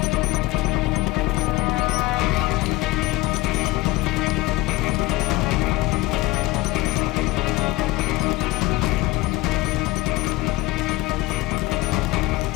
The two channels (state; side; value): quieter; right; 19.0 dB